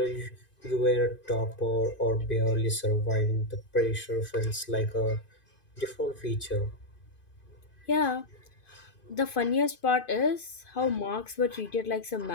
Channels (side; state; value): right; late; 2.5 ms